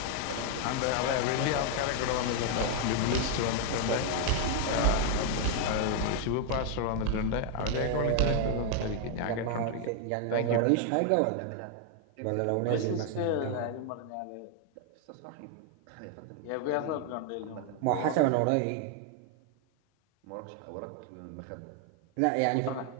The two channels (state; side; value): different; both; correlation 0.00